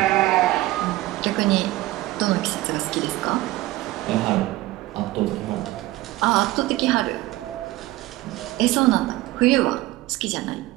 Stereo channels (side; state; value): left; quieter; 18.0 dB